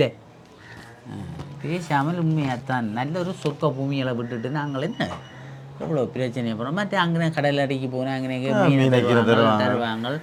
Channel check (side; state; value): both; identical; correlation 1.00